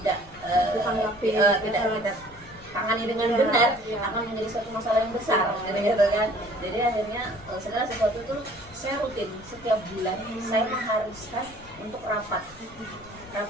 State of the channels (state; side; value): noise; left; rumble, 22 dB below the sound